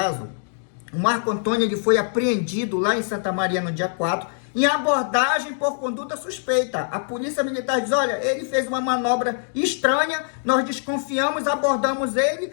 o Marco Antônio ele foi apreendido lá em Santa Maria no dia 4, em abordagem por conduta suspeita. A polícia militar diz: olha, ele fez uma manobra estranha, nós desconfiamos, abordamos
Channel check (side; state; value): right; silent; digital silence